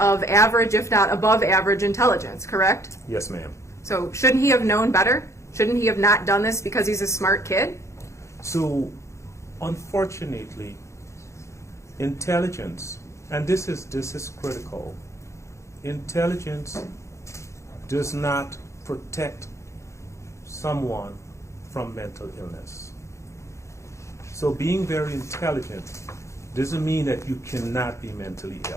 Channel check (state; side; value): late; right; 0.14 ms